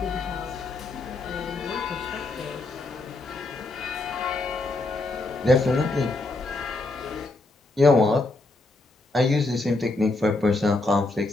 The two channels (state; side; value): quieter; right; 3.1 dB